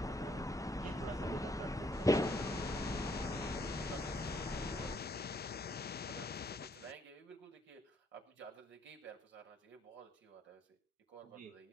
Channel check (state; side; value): normal; both; correlation 0.69